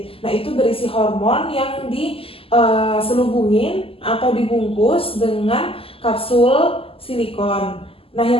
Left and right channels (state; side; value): late; right; 0.27 ms